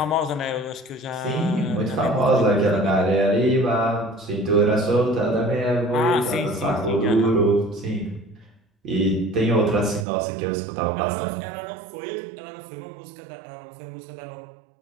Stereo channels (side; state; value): left; drops out; at 10.1 s